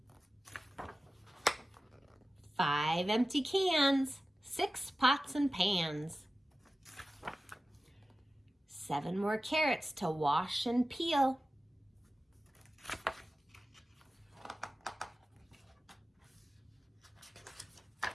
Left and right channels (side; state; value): both; normal; correlation 0.95